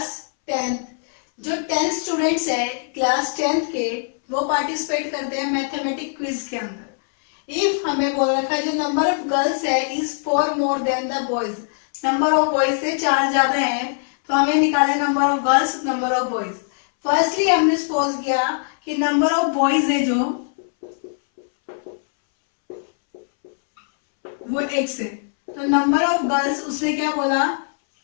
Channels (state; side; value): silent; right; 65 dB below the other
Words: 10, जो 10 स्टूडेंट्स है क्लास 10th के, वो पार्टिसिपेट करते हैं मैथमेटिक क्विज के अंदर। इफ हमें बोल रखा है जो नंबर ऑफ गर्ल्स है is 4 more than the boys, number of boys से 4 ज्यादा है, तो हमें निकाले number of girls, number of boys. Firstly हमने सपोज किया कि नंबर ऑफ बॉयज है जो वो x है, तो नंबर ऑफ गर्ल्स उसने क्या बोला,